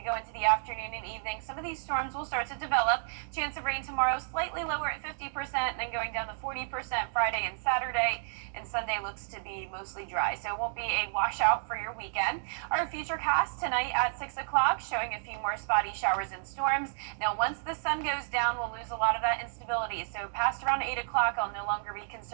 go into the afternoon and evening. Some of these storms will start to develop. Chance of rain tomorrow slightly lower at 50%, and then going down to 40% Friday and Saturday, and Sunday looks to be mostly dry, so it won't be a washout for your weekend. Our future cast tonight at 6 o'clock showing a few more spotty showers and storms. Now, once the sun goes down, we'll lose a lot of that instability, so past around 8 o'clock, I'll no longer be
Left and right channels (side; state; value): left; silent; digital silence